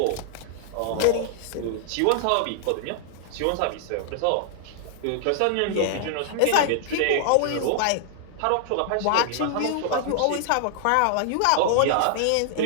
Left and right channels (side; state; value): both; different; correlation -0.01